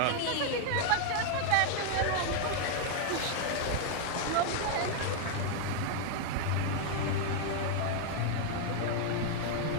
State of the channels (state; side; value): different; both; correlation 0.00